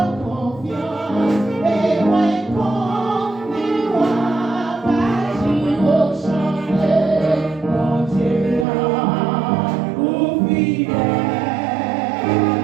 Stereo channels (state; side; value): drops out; left; at 8.7 s